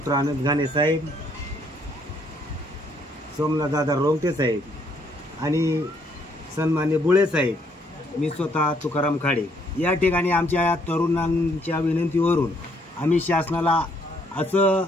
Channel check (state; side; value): normal; both; correlation 0.68